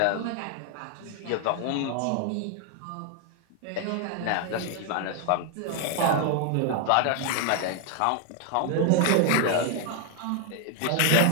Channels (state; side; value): different; both; correlation 0.00